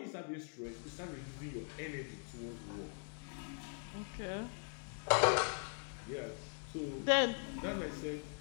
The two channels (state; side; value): silent; right; 50 dB below the other